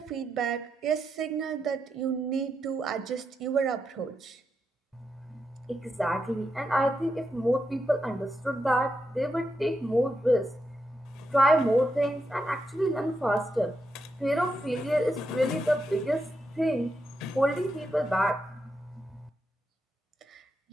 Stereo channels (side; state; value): both; normal; correlation 0.84